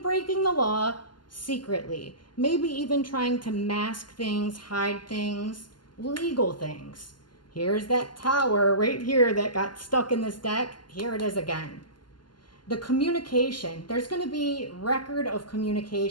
the law secretly. Maybe even trying to mask things, hide things, legal things. Here's that Tower right here that got stuck in this deck. Here it is again. The communication. There's going to be record of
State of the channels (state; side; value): late; right; 0.71 ms